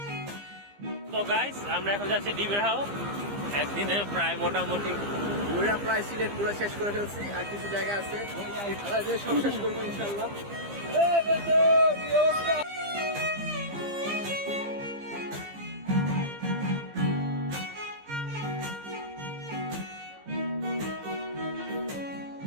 তো গাইস, আমরা এখন যাচ্ছি ডিবের হাও। একদিনে প্রায় মোটামুটি ঘুরে প্রায় সিলেট পুরো শেষ করে ফেলছি, আর কিছু জায়গা আছে সব শেষ করবো ইনশাল্লাহ।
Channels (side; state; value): left; late; 15 ms